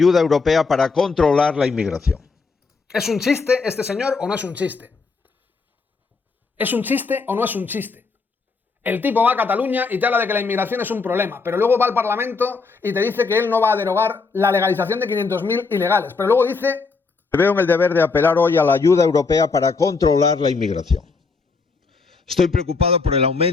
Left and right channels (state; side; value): quieter; right; 4.5 dB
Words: europea para controlar la inmigración. ¿Es un chiste este señor o no es un chiste? ¿Es un chiste o no es un chiste? El tipo va a Cataluña y te habla de que la inmigración es un problema, pero luego va al Parlamento y te dice que él no va a derogar la legalización de 500.000 ilegales, pero luego dice... Veo en el deber de apelar hoy a la ayuda europea para controlar la inmigración. Estoy preocupado por el